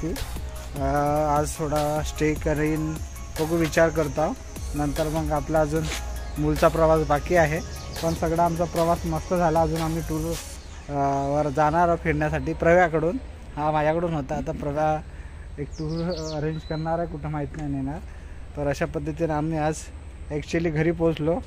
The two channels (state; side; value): identical; both; correlation 1.00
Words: आज थोडा स्टे करीन, बघू विचार करतो. नंतर मग आपला अजून मूलचा प्रवास बाकी आहे. पण सगळा आमचा प्रवास मस्त झाला. अजून आम्ही टूर वर जाणार फिरण्यासाठी प्रव्याकडून. हा माझ्याकडून होता. आता प्रव्या एक टूर अरेंज करणार आहे, कुठं माहीत नाही नेणार. तर अशा पद्धतीने आम्ही आज ॲक्च्युली घरी पोचलो.